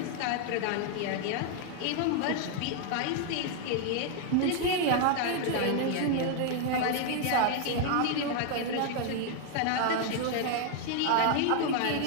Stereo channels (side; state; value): both; different; correlation 0.00